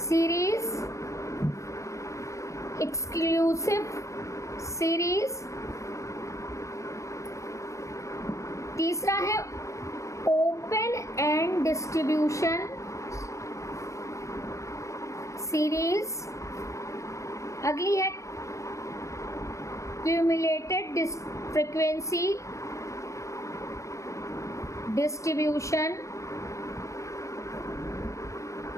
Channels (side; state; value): right; late; 0.15 ms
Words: एक्सक्लूसिव सीरीज, तीसरा है ओपन एंड डिस्ट्रीब्यूशन सीरीज, अगली है क्यूमुलेटेड फ्रीक्वेंसी डिस्ट्रीब्यूशन